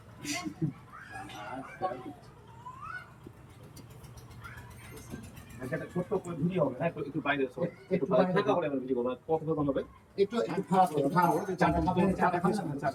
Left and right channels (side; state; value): both; identical; correlation 1.00